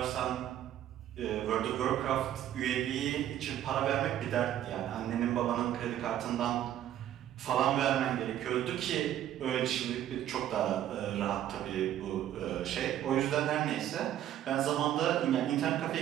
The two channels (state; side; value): quieter; left; 11.6 dB